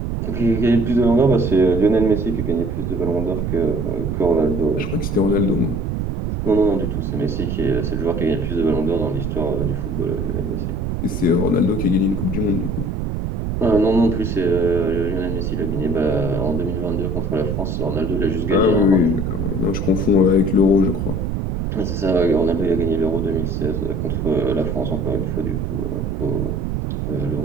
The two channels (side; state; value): right; noise; rumble, 2 dB below the sound